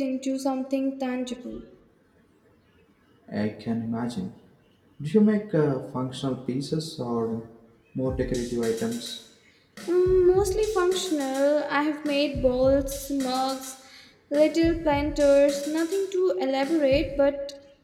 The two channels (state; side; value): identical; both; correlation 1.00